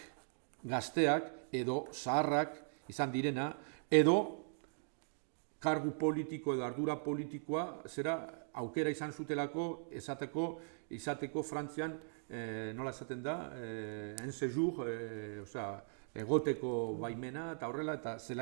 gazteak edo zaharrak izan direna, edo kargu politiko edo ardura politikoa aukera izan zutelako izateko Frantzian, nola esaten da, en séjour, egoteko baimena eta horrela, eta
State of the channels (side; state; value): left; silent; digital silence